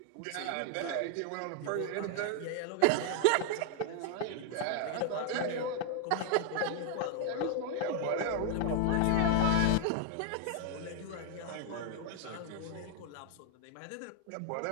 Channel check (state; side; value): different; both; correlation 0.00